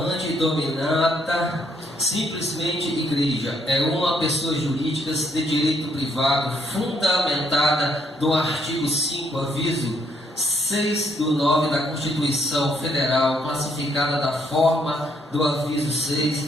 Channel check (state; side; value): normal; both; correlation 0.71